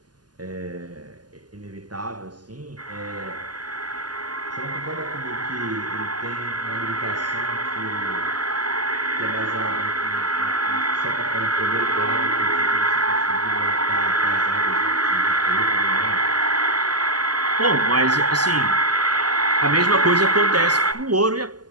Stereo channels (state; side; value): late; left; 0.70 ms